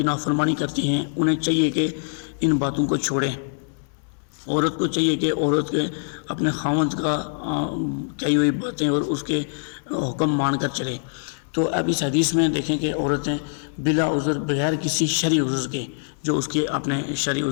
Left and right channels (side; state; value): right; silent; 63 dB below the other